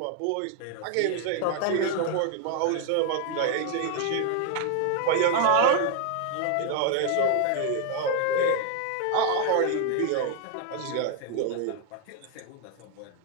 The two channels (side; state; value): both; different; correlation 0.00